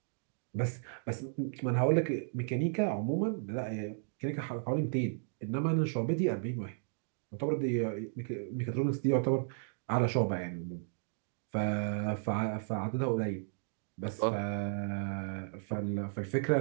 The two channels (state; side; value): silent; left; digital silence